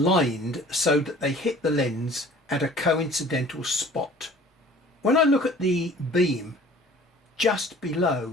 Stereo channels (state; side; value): normal; both; correlation 0.49